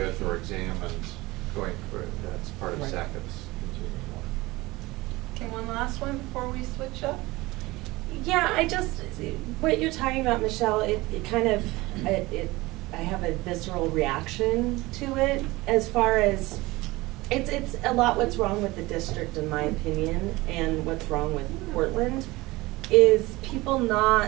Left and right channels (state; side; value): quieter; left; 20.8 dB